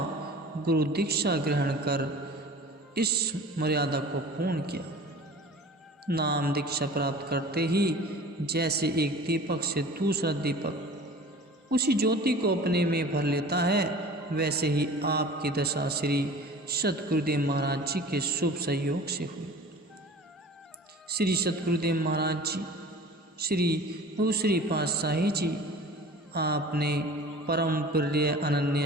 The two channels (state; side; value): normal; both; correlation 0.42